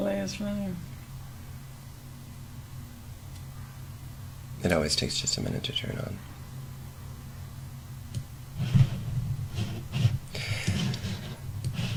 is running. It always takes just a minute to turn on.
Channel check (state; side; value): identical; both; correlation 1.00